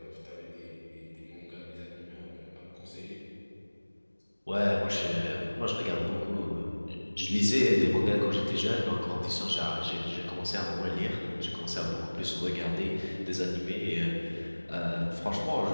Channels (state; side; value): inverted; both; correlation -1.00